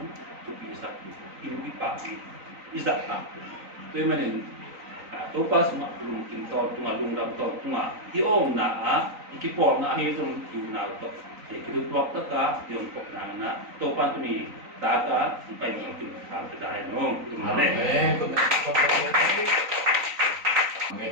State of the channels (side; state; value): left; late; 3.9 ms